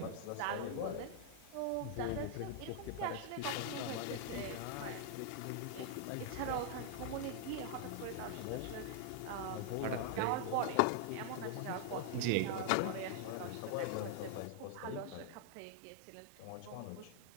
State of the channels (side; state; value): both; different; correlation -0.01